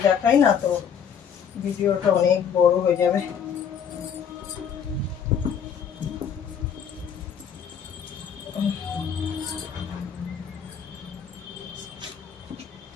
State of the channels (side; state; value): right; quieter; 7.7 dB